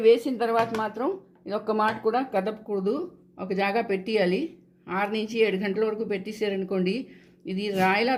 వేసిన తర్వాత మాత్రం ఇది ఒక్క మాట కూడా కదపకూడదు. ఒక జాగా పెట్టేయాలి. 6 నుంచి 7 గంటల వరకు పెట్టేసారనుకోండి, ఇది రాయిలా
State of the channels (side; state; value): both; identical; correlation 1.00